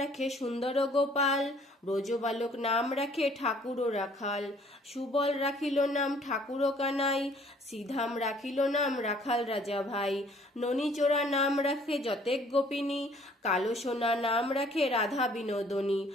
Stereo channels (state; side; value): normal; both; correlation 0.58